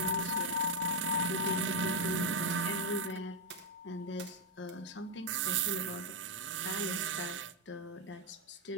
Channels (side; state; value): both; normal; correlation 0.02